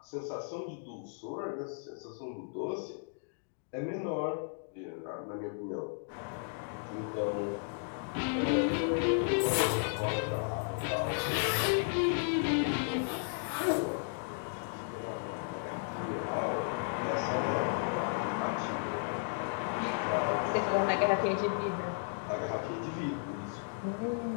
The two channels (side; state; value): right; silent; digital silence